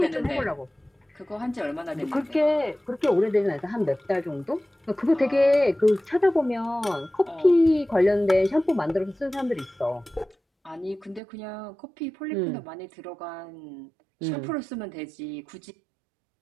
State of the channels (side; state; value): left; drops out; at 11.2 s